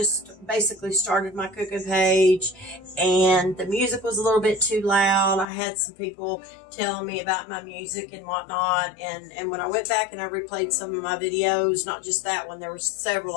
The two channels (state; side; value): drops out; right; at 5.5 s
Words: basically started my cooking page, and the music was a little bit too loud. I had some people telling me about my music and whatnot, and when I went back and I replayed some of my videos, not just that one, there was several